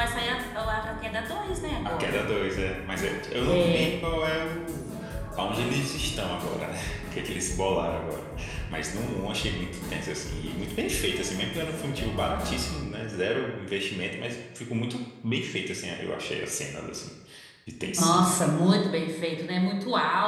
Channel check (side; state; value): both; identical; correlation 1.00